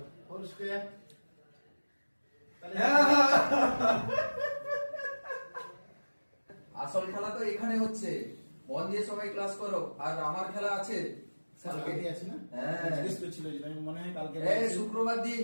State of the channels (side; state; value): both; inverted; correlation -1.00